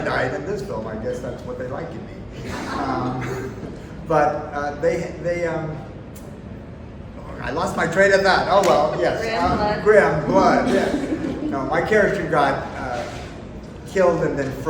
in this film. I guess that's what they like in me. But I lost my train of thought. Oh well, yes. Grimm blood. Yeah. No, my character got killed and then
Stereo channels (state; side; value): identical; both; correlation 1.00